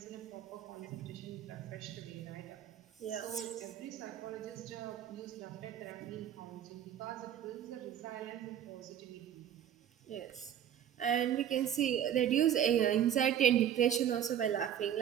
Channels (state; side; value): quieter; left; 10.0 dB